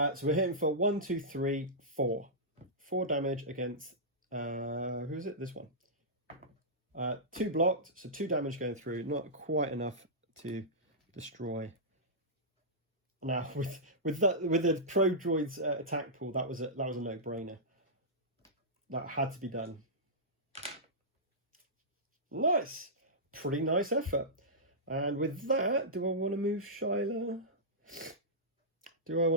we're hitting for 1, 2, 3, 4. 4 damage against, who is it? This one. 2 blocked, so 2 damage going through. Not quite enough to destroy. Now, with the Pro Droid's attack pool, that was a no-brainer. That had to be done. Nice. Pretty nice effort. And with that, do I want to move Shyla? Do I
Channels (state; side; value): normal; both; correlation -0.15